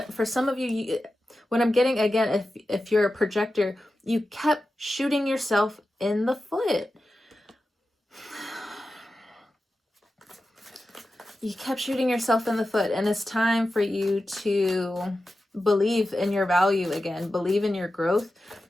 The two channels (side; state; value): both; normal; correlation 0.92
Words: for some of you, what I'm getting, again, if you're a projector, you kept shooting yourself in the foot. You kept shooting yourself in the foot, and it's time for you to believe in your value again, believe in your growth.